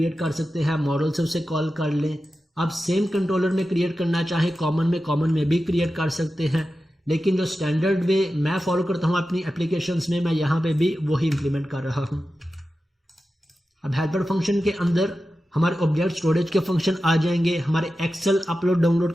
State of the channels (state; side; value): normal; both; correlation 0.92